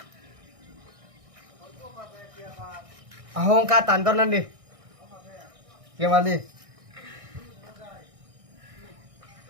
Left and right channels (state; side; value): late; left; 1.6 ms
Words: Ahong katan tao đi. Gimana đi?